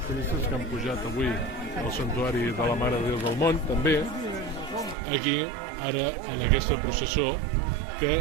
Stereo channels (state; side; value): drops out; left; at 5.0 s